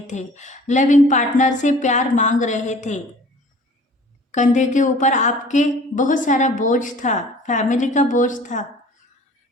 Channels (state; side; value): normal; both; correlation 0.48